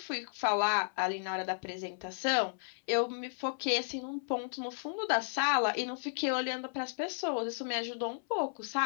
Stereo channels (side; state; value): right; silent; 55 dB below the other